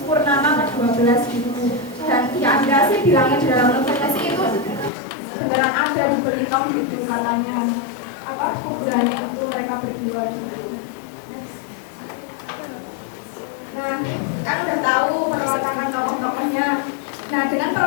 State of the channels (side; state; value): right; drops out; at 4.9 s